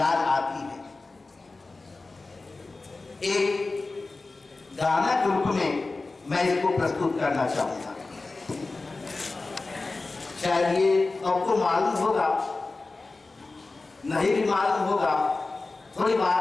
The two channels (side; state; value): right; quieter; 3.5 dB